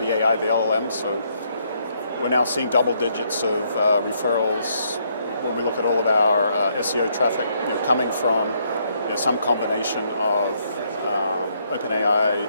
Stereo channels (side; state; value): both; inverted; correlation -0.72